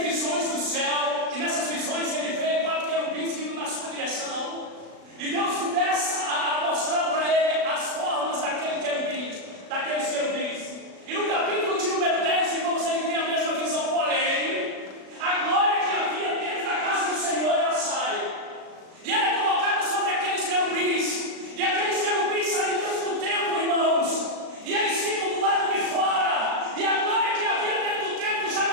do céu, e nessas visões ele vê 4 querubins vindo na sua direção, e Deus começa a mostrar para ele as formas daqueles querubins. E no capítulo de número 10, irmãos, ele tem a mesma visão, porém, a glória que havia dentro da casa do Senhor, ela sai, e ela é colocada sobre aqueles querubins, e aqueles querubins saem dentro do templo, irmãos, e eles ficam do lado de fora, e a glória que havia dentro do templo já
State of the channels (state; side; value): late; left; 36 ms